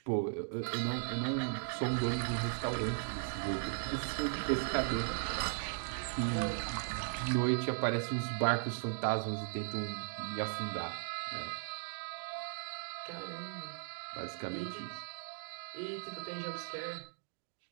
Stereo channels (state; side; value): silent; left; digital silence